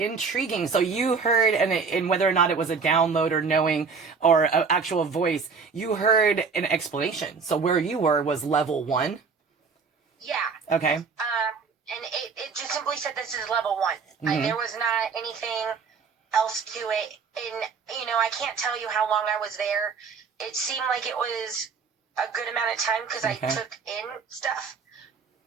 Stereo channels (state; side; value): quieter; left; 5.3 dB